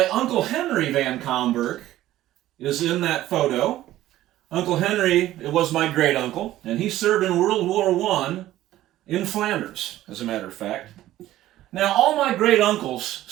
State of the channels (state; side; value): quieter; left; 14.4 dB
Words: Uncle Henry Van Comberg is in that photo. Uncle Henry, it was my great uncle, and he served in World War I in Flanders, as a matter of fact. Now, all my great uncles